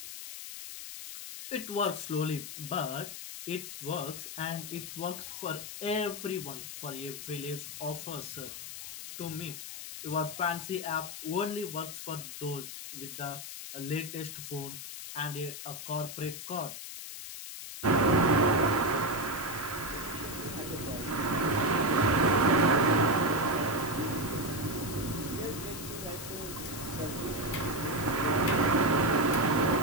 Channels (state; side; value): noise; left; hiss, 9 dB below the sound